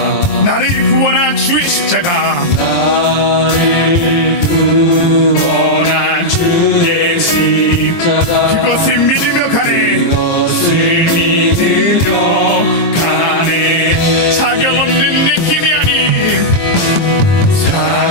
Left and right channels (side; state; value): right; late; 23 ms